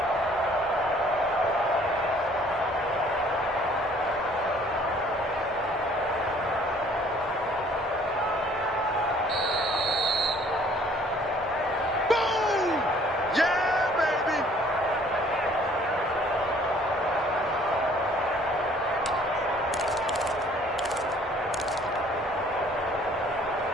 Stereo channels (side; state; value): both; normal; correlation 0.57